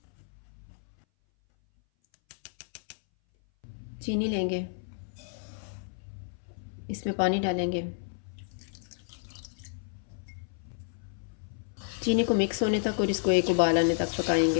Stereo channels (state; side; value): silent; right; 57 dB below the other